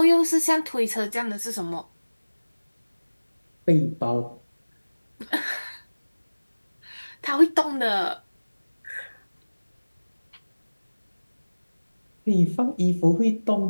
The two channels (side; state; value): both; inverted; correlation -1.00